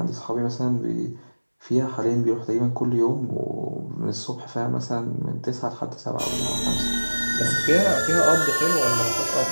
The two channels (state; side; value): inverted; both; correlation -1.00